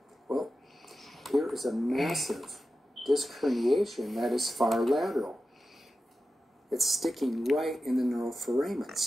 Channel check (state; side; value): normal; both; correlation 0.92